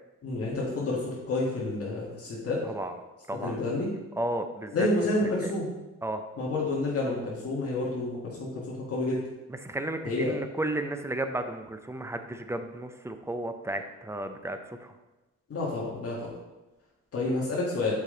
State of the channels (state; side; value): normal; both; correlation 0.45